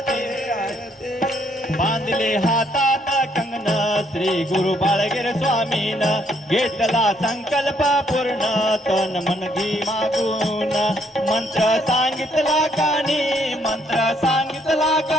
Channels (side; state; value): both; normal; correlation 0.69